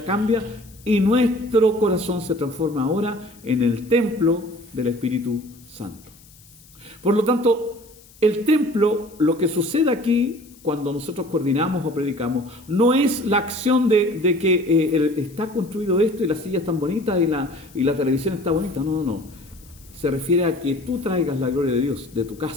cambia y nuestro corazón se transforma ahora en el templo del Espíritu Santo. Por lo tanto, el templo, lo que sucede aquí, cuando nosotros coordinamos o predicamos, no es la acción de que está construido esto y las sillas están bonitas y la televisión está bonita. No. Se refiere a que tú traigas la gloria de Dios de tu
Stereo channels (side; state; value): left; noise; hiss, 25 dB below the sound